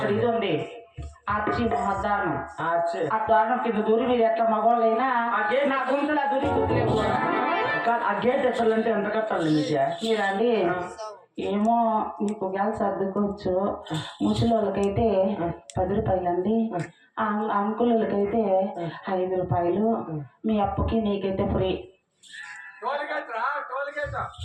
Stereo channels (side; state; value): both; identical; correlation 1.00